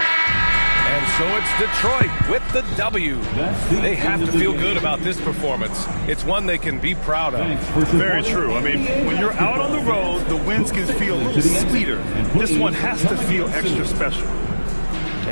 So it's Detroit with the W. They have to feel good about this performance. It's one they can be proud of. Very true. I mean, when you're out on the road, the wins can feel a little sweeter. This one has to feel extra special.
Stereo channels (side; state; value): both; inverted; correlation -1.00